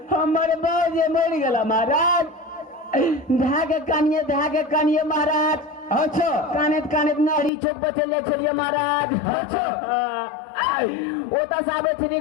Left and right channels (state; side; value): drops out; right; at 7.5 s